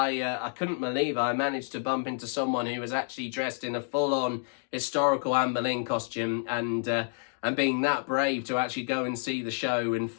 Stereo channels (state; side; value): silent; right; 58 dB below the other